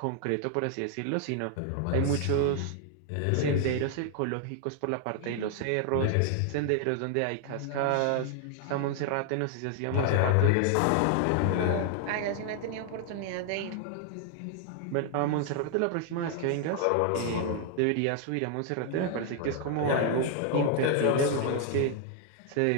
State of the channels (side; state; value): both; different; correlation 0.00